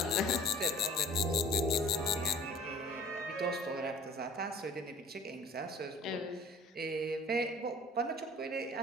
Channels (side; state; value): both; normal; correlation 0.48